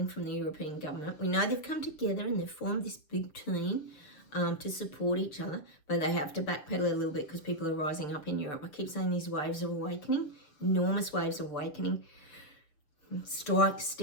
from the European government. We know they've come together and they've formed this big team to support each other, but they have to backpedal a little bit because people are rising up in Europe. I keep saying these waves of awakening, enormous waves of awakening, strikes,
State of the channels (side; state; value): right; late; 6.8 ms